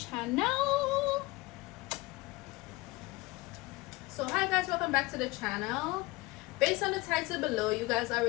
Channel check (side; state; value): right; quieter; 21.6 dB